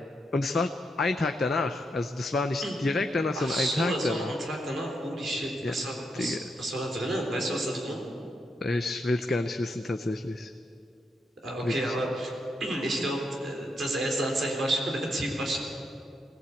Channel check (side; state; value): both; normal; correlation 0.80